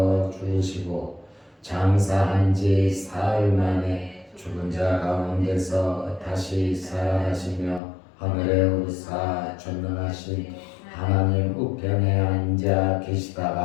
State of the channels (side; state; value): right; drops out; at 7.8 s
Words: 죽으시고 장사한 지 사흘 만에 죽은 자 가운데서 다시 살아나시며 하늘에 오르사 전능하신 하나님 우편에 앉아